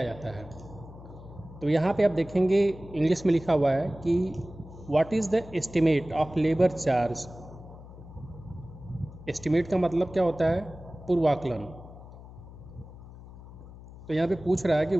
जाता है। तो यहाँ पे आप देखेंगे इंग्लिश में लिखा हुआ है कि what is the estimate of labour charge. Estimate का मतलब क्या होता है? पूर्वाकलन। तो यहाँ पे पूछ रहा है कि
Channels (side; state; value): left; noise; hum, 17 dB below the sound